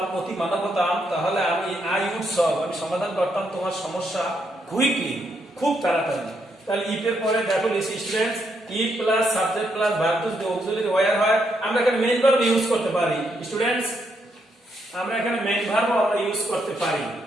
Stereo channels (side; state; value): both; normal; correlation 0.77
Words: অতি মানব হতাম, তাহলে আমি আই উড সলভ, আমি সমাধান করতাম তোমার সমস্যা কুইকলি, খুব তাড়াতাড়ি। তাহলে ইফ এর পরে দেখো students, if plus subject plus verb two যদি অক্সিলারি ওয়্যার হয়, আমরা এখানে মেইন ভার্ব ইউজ করতে পারি। স্টুডেন্টস, আমরা এখানে মেইন ভার্ব আমরা ইউজ করতে পারি।